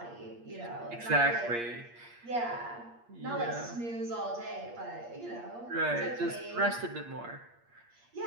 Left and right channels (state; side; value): late; left; 8.5 ms